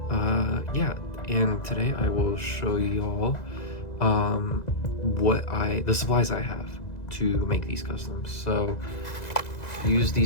yeah, and today I will show y'all the supplies I have to make these customs. So use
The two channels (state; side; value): late; right; 2.0 ms